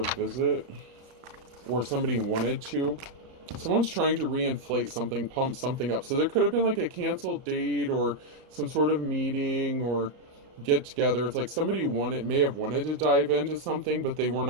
visit, or somebody wanted to. Someone's trying to reinflate something, pump something up. So there could have been like a canceled date or some sort of meeting or get together. It's like somebody may have wanted to dive into something, but they were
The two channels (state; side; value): late; left; 34 ms